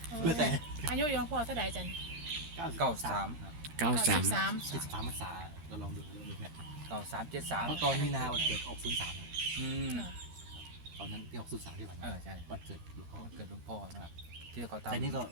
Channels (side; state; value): left; late; 13 ms